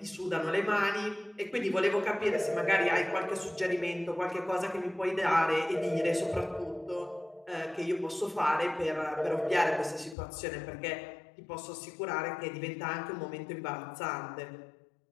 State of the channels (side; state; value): right; drops out; at 10.2 s